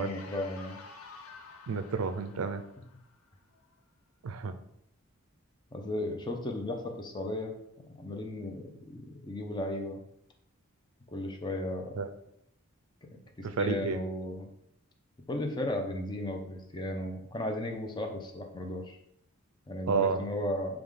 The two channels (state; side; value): normal; both; correlation 0.25